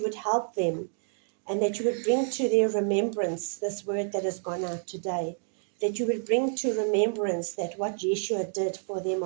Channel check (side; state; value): left; silent; 59 dB below the other